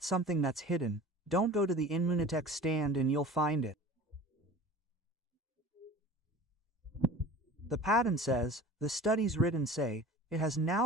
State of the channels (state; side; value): normal; both; correlation 0.40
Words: something that's hidden. Don't go to the Inmunitech stand and you'll find it. The patent says, the studies written say, it has